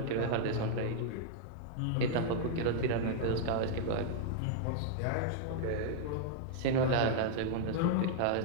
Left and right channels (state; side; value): different; both; correlation -0.01